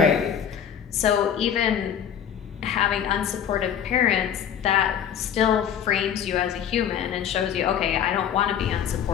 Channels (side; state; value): right; quieter; 8.9 dB